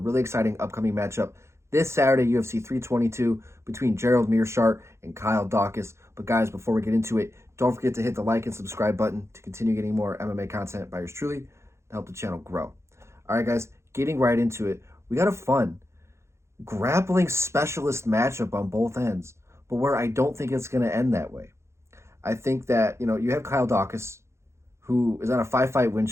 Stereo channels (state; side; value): late; left; 0.13 ms